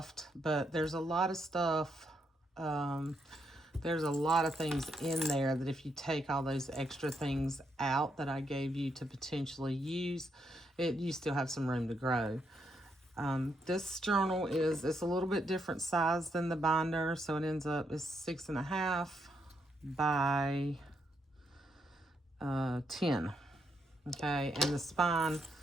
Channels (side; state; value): both; normal; correlation 0.79